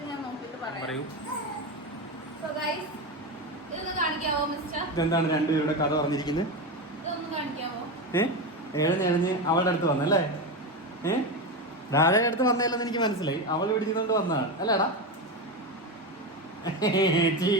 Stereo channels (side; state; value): both; normal; correlation 0.17